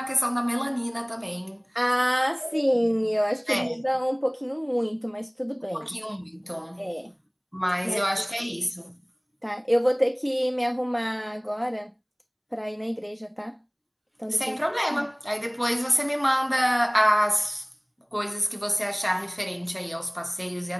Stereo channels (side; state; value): both; identical; correlation 1.00